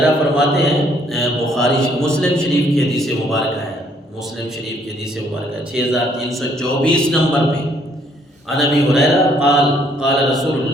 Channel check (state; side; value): normal; both; correlation 0.66